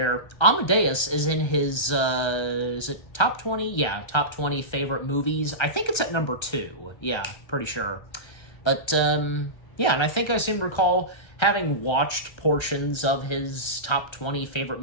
Amadeus is in his, is it top 20? Yeah, top 20 favorite movies. I think it's at number 2. Yeah, pretty sure. But, yeah, and I think I seem to recall having watched portions of his top 20 favorite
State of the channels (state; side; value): late; right; 1.3 ms